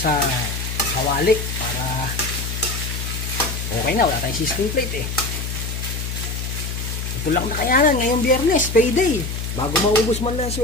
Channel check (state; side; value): noise; left; hum, 4 dB below the sound